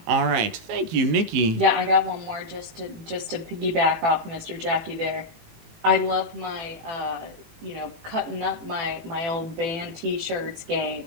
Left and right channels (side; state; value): left; late; 18 ms